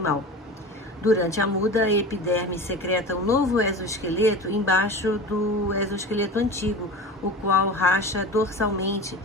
Durante a muda, a epiderme secreta um novo exoesqueleto embaixo do exoesqueleto antigo, o qual racha dorsalmente,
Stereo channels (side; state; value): both; normal; correlation 0.33